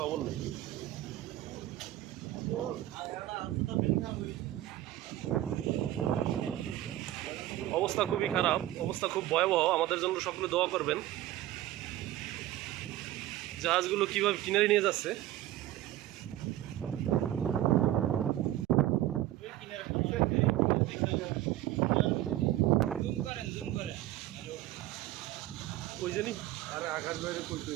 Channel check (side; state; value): left; quieter; 14.3 dB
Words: নেই। অবস্থা খুবই খারাপ, অবস্থা খুব ভয়াবহ। আমাদের জন্য সকলে দোয়া করবেন। জাহাজগুলো কিভাবে কিনারে নিয়ে যাচ্ছে। ওই জানি আরে আকাশ বাইরে কইতে